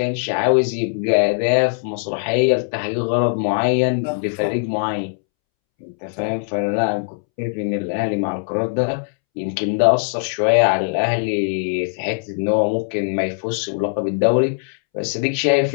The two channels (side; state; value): right; silent; 66 dB below the other